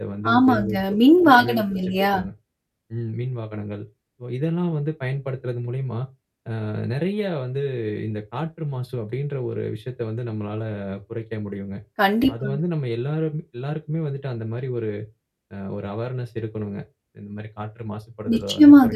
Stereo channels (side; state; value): both; identical; correlation 1.00